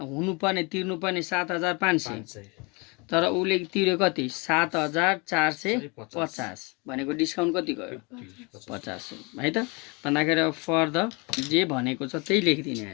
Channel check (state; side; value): quieter; right; 29.1 dB